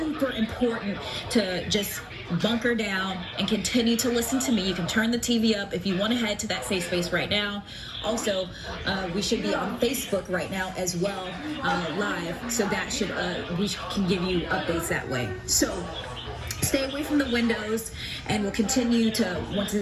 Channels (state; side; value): identical; both; correlation 1.00